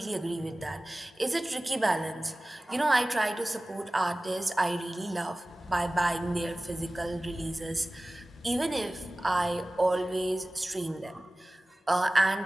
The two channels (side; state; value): both; normal; correlation 0.98